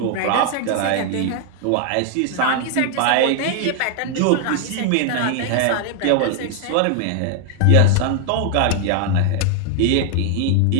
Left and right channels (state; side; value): different; both; correlation 0.00